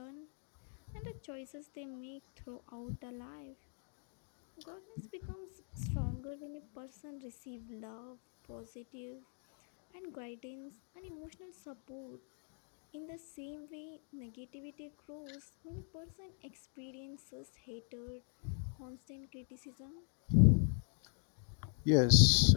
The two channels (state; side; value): silent; right; 51 dB below the other